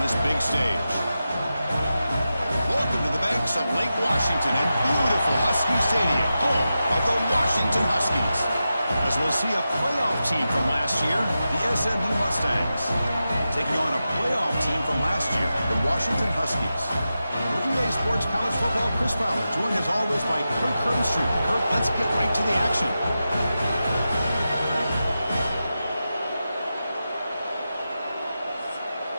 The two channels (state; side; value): inverted; both; correlation -0.91